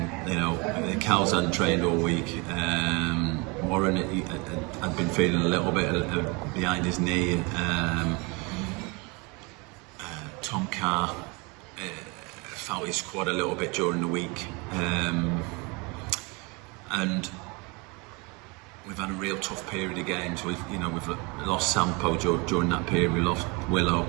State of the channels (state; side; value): quieter; left; 28.5 dB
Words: Cal's hadn't trained all week. Warren had been feeling a little bit behind his knee. Tom Carr felt his squad a little bit during the week, and we've had a real tough period of games. We've lost Sampo during that period. We lost Willow.